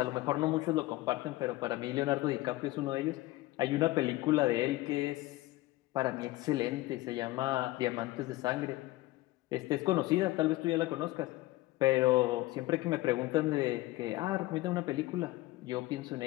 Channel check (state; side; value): quieter; right; 18.4 dB